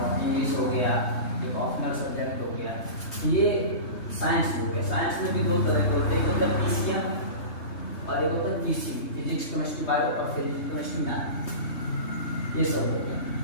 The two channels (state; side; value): late; right; 3.2 ms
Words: इंग्लिश हो गया, एक ऑप्शनल सब्जेक्ट हो गया। ये साइंस हो गया। साइंस में भी 2 तरह के होते हैं, एक होता है PCM और एक होता है PCB, फिजिक्स, केमिस्ट्री, बायो और फिजिक्स, केमिस्ट्री, मैथ, ये सब हो गया।